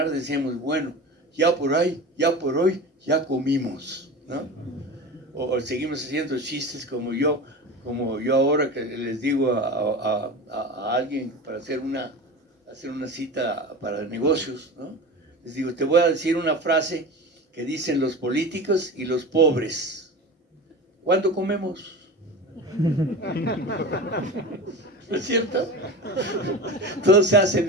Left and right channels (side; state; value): both; normal; correlation 0.30